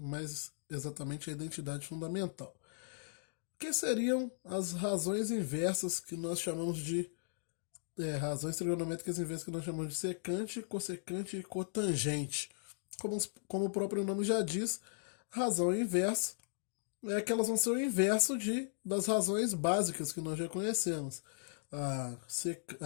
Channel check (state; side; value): silent; right; digital silence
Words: exatamente a identidade fundamental. Que seriam as razões inversas que nós chamamos de razões trigonométricas inversas que nós chamamos de secante, cossecante e cotangente. Como o próprio nome já diz, razão inversa é que elas vão ser o inverso das razões básicas que nós já conhecemos. A